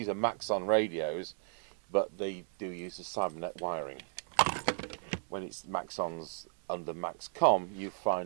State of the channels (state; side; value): silent; left; digital silence